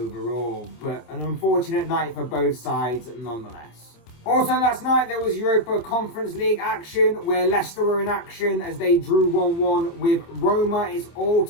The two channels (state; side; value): late; right; 26 ms